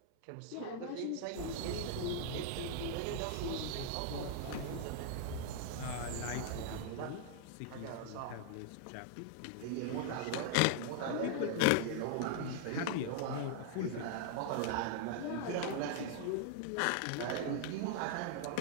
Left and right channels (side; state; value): both; different; correlation -0.01